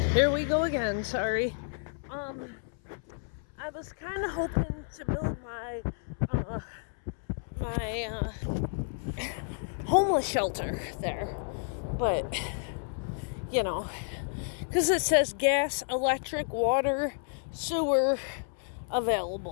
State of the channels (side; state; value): right; silent; 57 dB below the other